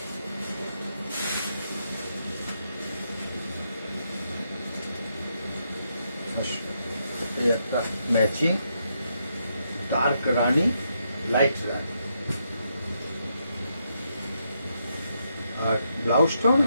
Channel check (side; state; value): both; inverted; correlation -0.79